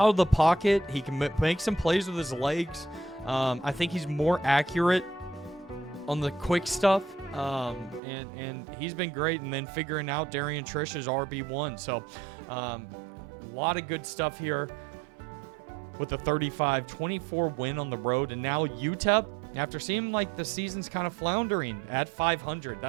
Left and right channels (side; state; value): left; drops out; at 8.0 s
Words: of the pocket. He can make some plays with his legs. I think he's more accurate on the quick stuff, and he's been great. And then figuring out Darian Trish's RB1. So a lot of good stuff here with a 35-24 win on the road. And now UTEP, after seeming like the season's kind of floundering at 500,